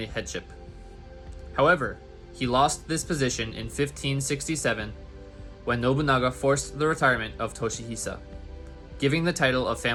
headship. However, he lost this position in 1567 when Nobunaga forced the retirement of Toshihisa, giving the title of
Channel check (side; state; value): both; identical; correlation 1.00